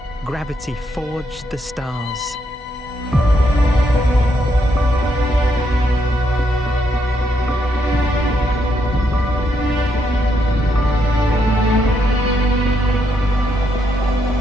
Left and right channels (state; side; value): normal; both; correlation 0.77